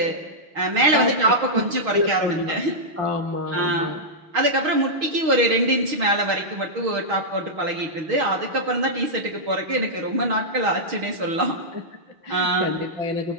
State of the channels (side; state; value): left; late; 6.3 ms